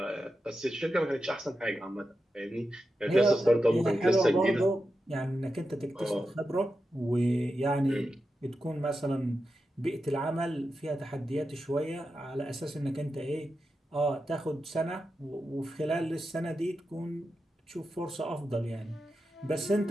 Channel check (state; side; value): normal; both; correlation 0.90